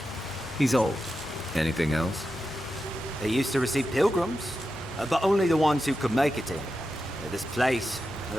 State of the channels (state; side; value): normal; both; correlation 0.89